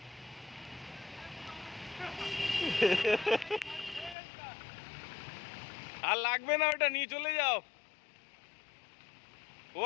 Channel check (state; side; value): drops out; right; at 4.2 s